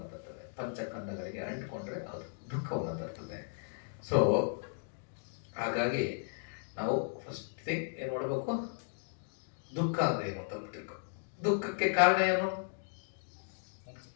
ತರ್ತದೆ. ಪಂಚಕಂದಗಳಿಗೆ ಅಂಟ್ಕೊಂಡ್ರೆ ಅದು ದುಃಖವನ್ನು ತರ್ತದೆ. ಸೊ ಹಾಗಾಗಿ ನಾವು ಫಸ್ಟ್ ಥಿಂಗ್ ಏನು ಮಾಡಬೇಕು? ದುಃಖ ಅಂದ್ರೆ ಏನು ಅಂತ ತಿಳ್ಕೊ. ದುಃಖಕ್ಕೆ ಕಾರಣ ಏನು?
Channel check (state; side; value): silent; right; digital silence